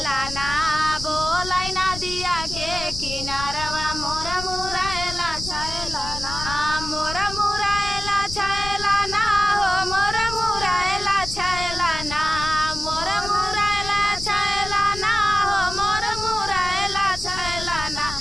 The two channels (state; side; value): noise; left; rumble, 9 dB below the sound